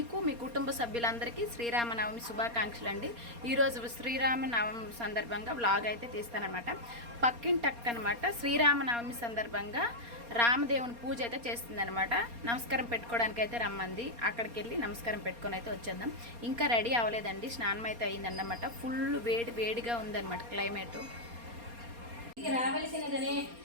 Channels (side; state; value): left; late; 4.3 ms